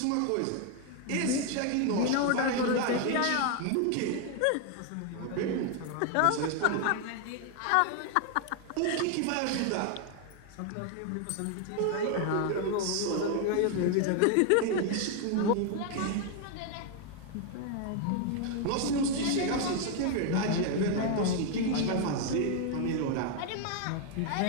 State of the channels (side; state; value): both; different; correlation 0.01